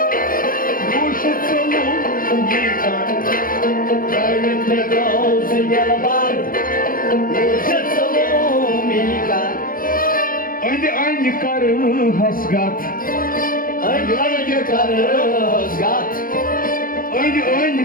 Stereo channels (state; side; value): late; right; 0.41 ms